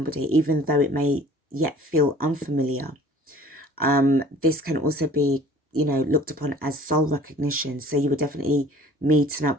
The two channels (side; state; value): both; normal; correlation 0.49